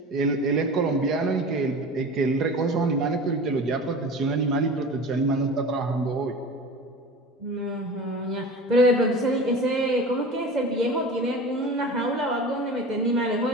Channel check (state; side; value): normal; both; correlation 0.35